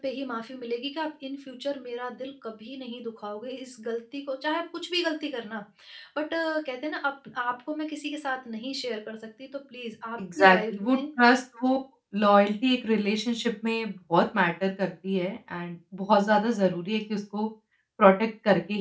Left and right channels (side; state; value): both; identical; correlation 1.00